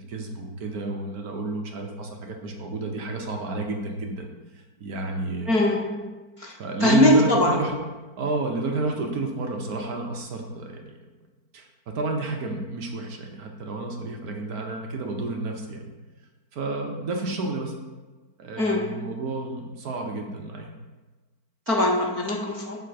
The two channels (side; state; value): left; late; 4.5 ms